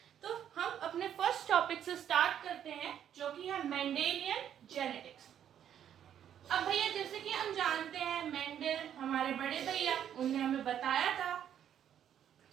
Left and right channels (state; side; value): quieter; left; 9.8 dB